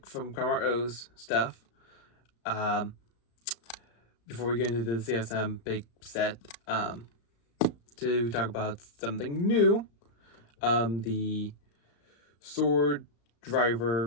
from Karma O's stuff. Before we get into the CSM big set, to talk about something new, the Sword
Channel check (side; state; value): right; late; 35 ms